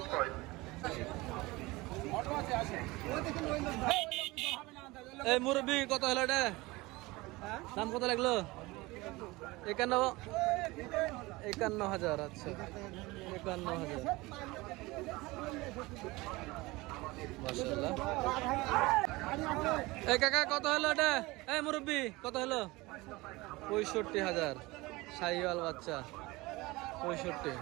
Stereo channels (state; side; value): quieter; left; 21.8 dB